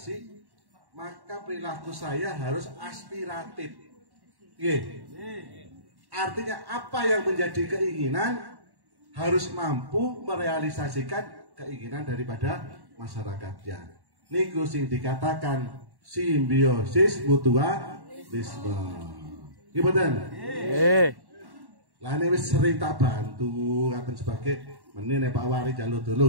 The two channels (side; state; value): left; late; 1.1 ms